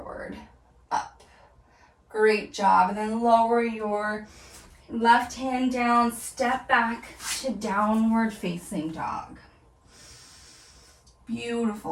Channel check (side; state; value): both; identical; correlation 1.00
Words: up. Great job. And then lower your left hand down, step back to downward facing dog.